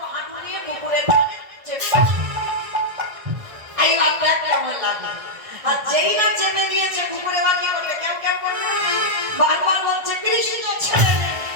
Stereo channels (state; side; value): late; left; 1.6 ms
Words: হাঁটু নিয়ে কুকুরের কানে চেপে। এইবার দেখ কেমন লাগে। আর যেই না চেপে দিয়েছে, কুকুরে বাকি করবে, কেউ কেউ করবে, বারবার বলছে, কৃষ্ণ ছেড়ে দে,